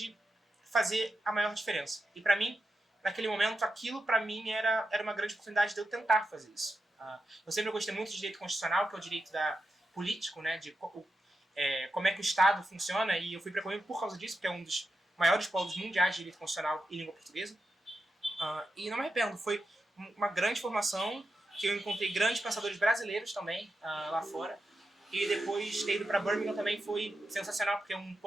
fazer a maior diferença. E para mim, naquele momento, aquilo para mim era uma grande oportunidade de eu tentar fazer isso. Eu sempre gostei muito de direito constitucional, que é o direito político, né, de como é que o Estado funciona, e eu fui para Coimbra por causa disso, porque é um dos maiores polos mundiais de direito constitucional e língua portuguesa. E não me arrependo, foi uma grande formação, que eu encontrei grandes pensadores brasileiros também lá fora. E depois ter ido para Birmingham também foi sensacional, porque é um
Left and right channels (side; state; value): both; normal; correlation 0.88